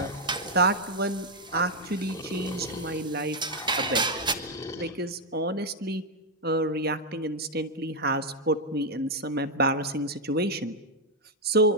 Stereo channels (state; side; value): normal; both; correlation 0.00